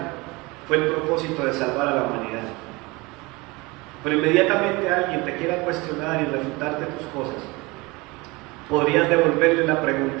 fue el propósito de salvar a la humanidad. Pero inmediatamente alguien te quiera cuestionar y refutarte tus cosas, podrías devolverle la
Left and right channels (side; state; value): left; quieter; 24.2 dB